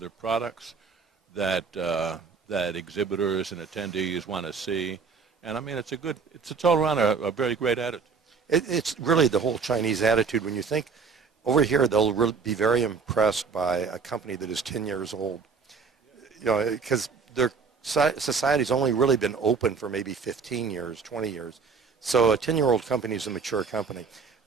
products that exhibitors and attendees want to see. And I mean, it's all around a very great attitude. It's really the whole Chinese attitude. When you think over here, they'll really be very impressed by a company that is 10 years old. You know, because their society's only really been open for maybe 15 years, 20 years. So a 10-year-old company is a mature company.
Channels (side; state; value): left; quieter; 5.3 dB